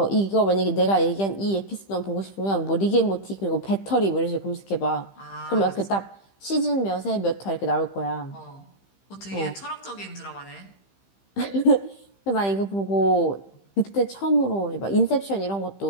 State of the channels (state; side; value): late; right; 15 ms